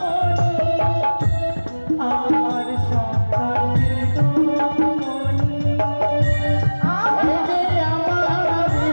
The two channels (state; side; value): inverted; both; correlation -1.00